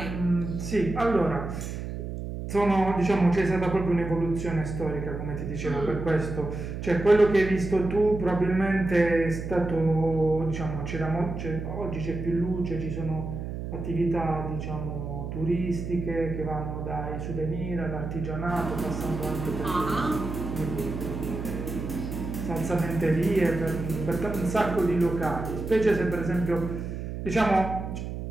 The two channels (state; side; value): noise; right; hum, 6 dB below the sound